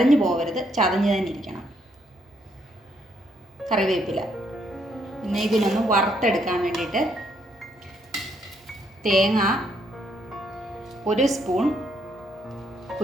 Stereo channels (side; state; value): both; normal; correlation 0.73